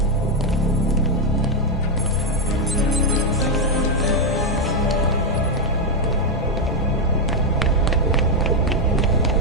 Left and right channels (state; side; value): normal; both; correlation 0.03